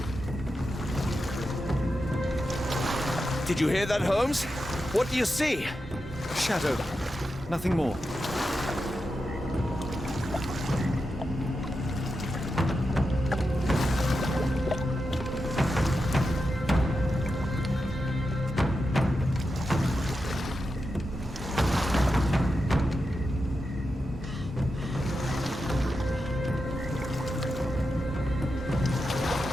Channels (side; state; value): both; normal; correlation 0.89